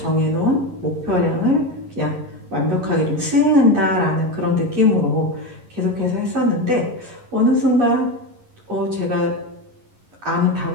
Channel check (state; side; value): late; left; 11 ms